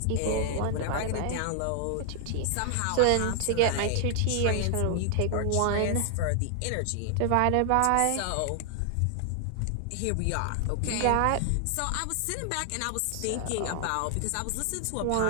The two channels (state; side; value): different; both; correlation 0.00